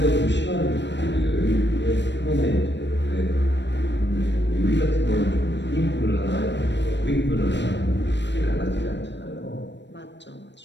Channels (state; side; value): late; right; 0.52 ms